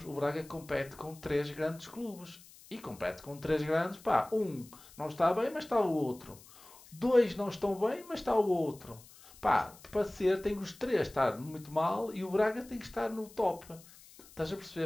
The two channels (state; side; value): noise; left; hiss, 22 dB below the sound